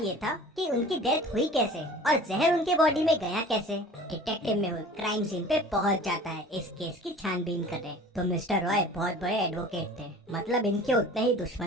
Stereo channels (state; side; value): normal; both; correlation 0.43